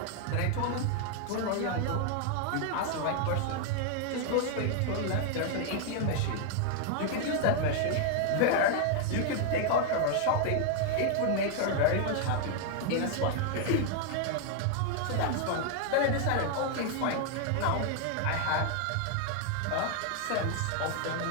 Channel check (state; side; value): different; both; correlation 0.00